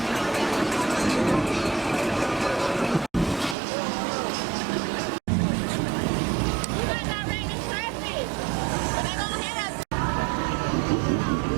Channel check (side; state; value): left; drops out; at 3.6 s